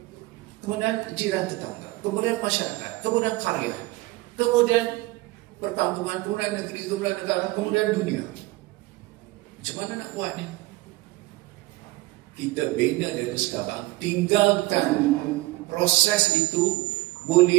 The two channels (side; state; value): left; quieter; 20.0 dB